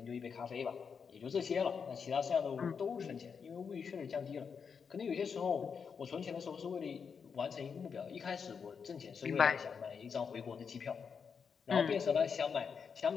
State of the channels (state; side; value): quieter; right; 6.2 dB